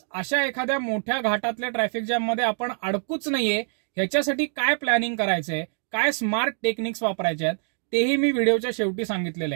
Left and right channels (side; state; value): left; silent; 62 dB below the other